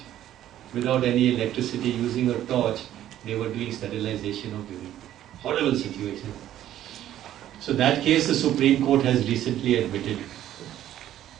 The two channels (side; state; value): left; quieter; 12.2 dB